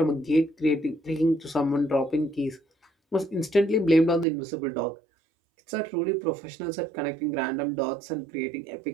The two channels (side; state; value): left; drops out; at 4.2 s